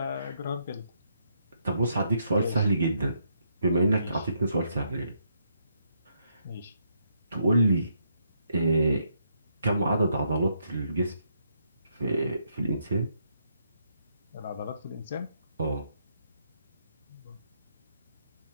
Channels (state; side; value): inverted; both; correlation -0.75